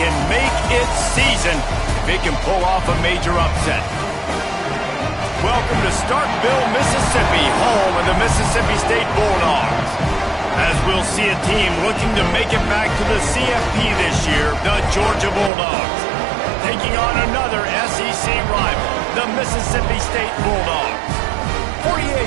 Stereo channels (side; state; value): left; drops out; at 15.5 s